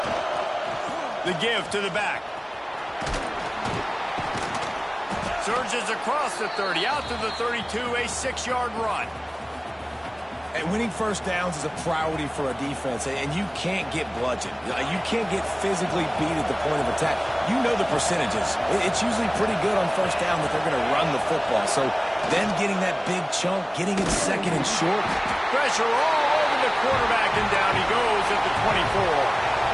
The give to the back. Surges across the 30, out to the 32, a 6-yard run. And winning first downs is a priority for a defense, and you can't get bludgeoned. You can't get physically beat at the point of attack. You know the percentages. It's usually pretty good on first down that they're going to run the football. So then getting that big chunk, getting it second and short. Pressure all over the quarterback, and down he goes at the 24.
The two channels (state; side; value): identical; both; correlation 1.00